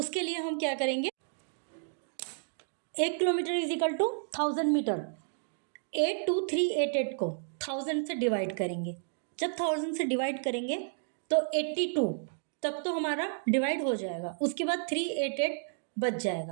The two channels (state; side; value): silent; left; digital silence